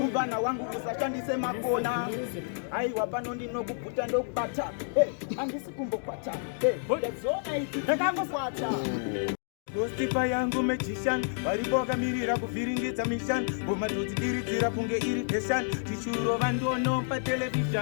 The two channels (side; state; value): right; silent; digital silence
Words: Uvana wangu kusashandise makona. Aiwa pano ndinokuputa ndokubata. Andisi kumbokwata. Ndezona iti ndakakukwata. Gostipa yangu magician, variboka mirira kuviringidza mission. Bomadoti diridzira kunge irritation. Tichuro vandono pa